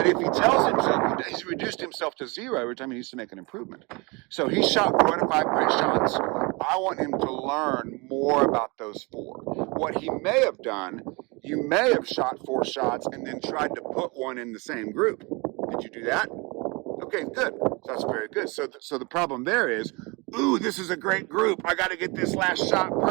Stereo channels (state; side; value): quieter; left; 27.6 dB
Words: if he tells himself, he's reduced himself to 0 every time he needs to make an improvement. So he shot 4 out of 5 great shots. I want him to learn more about those 4. What he may have done, you may have shot 4 shots and then tried to put one in the same group. Did you do that? Okay, good. So that's very good. So the problem there is, ooh, this is a great group. I got to get this last shot